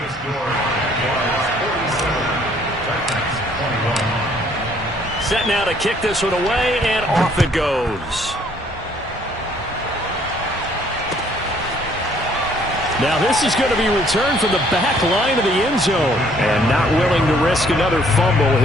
score was 47. 21. Set now to kick this one away, and off it goes. Now this is going to be returned from the back line of the end zone. And not willing to risk another fumble,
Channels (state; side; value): normal; both; correlation 0.62